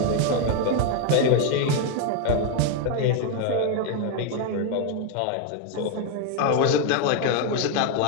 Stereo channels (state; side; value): different; both; correlation 0.01